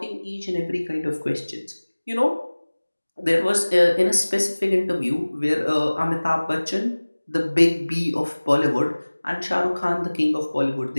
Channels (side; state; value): both; inverted; correlation -1.00